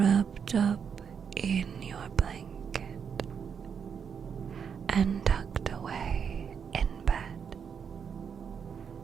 up in your blanket and tucked away in bed.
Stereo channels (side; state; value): left; quieter; 7.0 dB